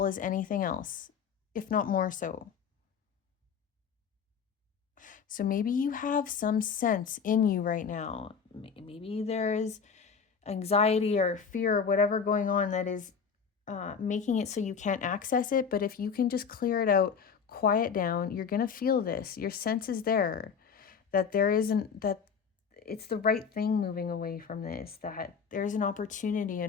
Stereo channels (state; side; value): quieter; right; 6.4 dB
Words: as anything else, if not more so. So maybe you have some sense in you right now. Maybe there is anxiety or fear or whatever going on that is making it so you can't access it. But if you can just clear it out, quiet down, you're going to feel this. Your sense is there, that it's the right thing moving away from this, that there's an opportunity